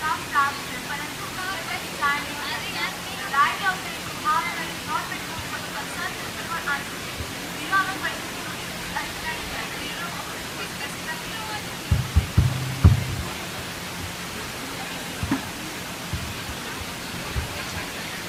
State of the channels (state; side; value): identical; both; correlation 1.00